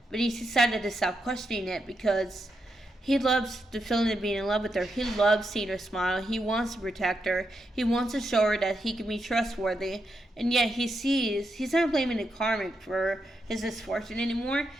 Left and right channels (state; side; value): normal; both; correlation 0.84